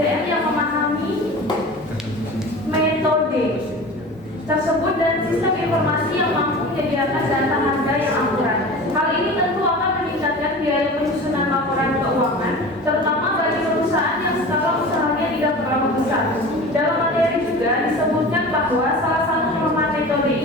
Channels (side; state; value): both; normal; correlation 0.36